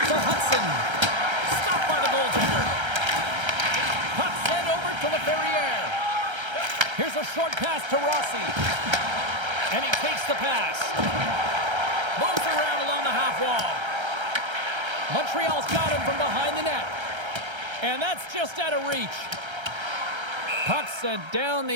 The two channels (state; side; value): late; left; 1.3 ms